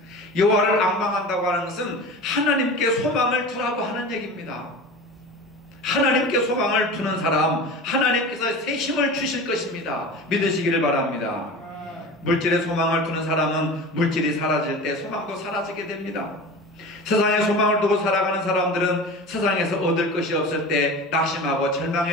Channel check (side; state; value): both; normal; correlation 0.33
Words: 여호와를 앙망한다고 하는 것은 하나님께 소망을 두라고 하는 얘기입니다. 하나님께 소망을 두는 사람, 하나님께서 새 힘을 주실 것입니다. 믿으시기를 바랍니다. 물질에 소망을 두는 사람은 물질이 사라질 때 소망도 사라지게 됩니다. 세상에 소망을 두고 살아가는 사람들은 세상에서 얻을 것이 없을 때 낙심하고